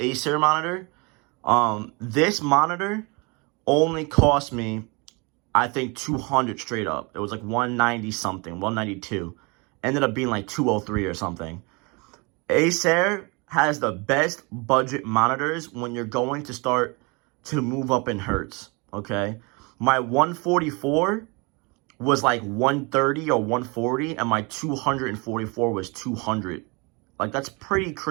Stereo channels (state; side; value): quieter; left; 28.8 dB